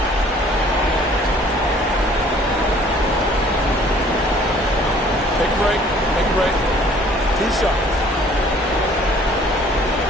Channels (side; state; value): both; normal; correlation 0.55